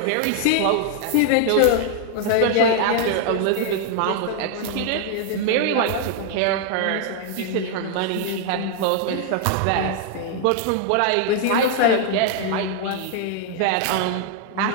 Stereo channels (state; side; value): different; both; correlation 0.00